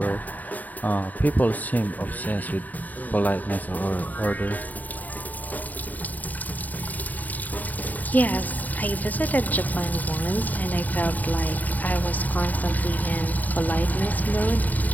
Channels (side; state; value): right; late; 0.081 ms